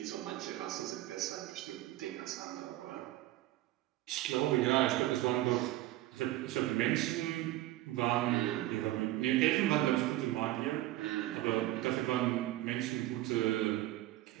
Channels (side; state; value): left; quieter; 15.8 dB